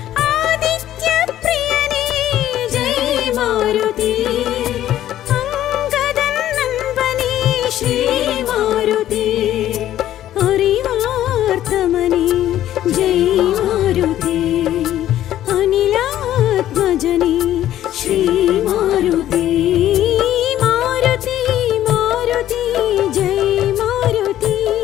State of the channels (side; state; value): right; quieter; 12.5 dB